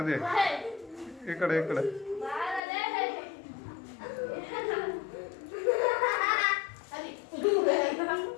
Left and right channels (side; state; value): right; drops out; at 2.6 s